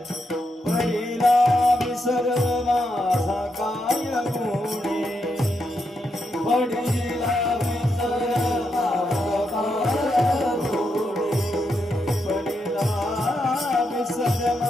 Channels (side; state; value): both; normal; correlation 0.82